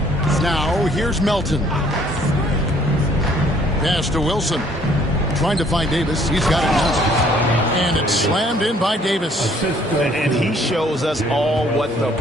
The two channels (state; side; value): normal; both; correlation 0.61